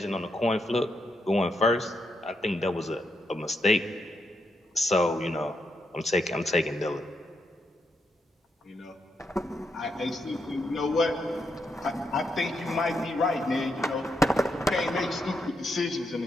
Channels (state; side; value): normal; both; correlation 0.81